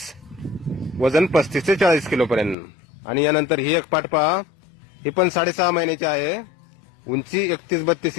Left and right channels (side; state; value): right; drops out; at 2.6 s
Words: वजन 35 ते 40 किलो पर्यंत. आणि यानंतर ही एक पाट पहा. ही पण 6.5 महिन्याची आहे, उंची 31-32